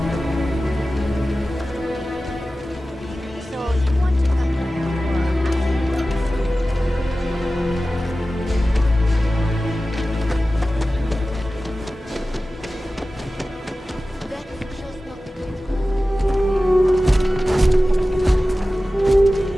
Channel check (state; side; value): normal; both; correlation 0.95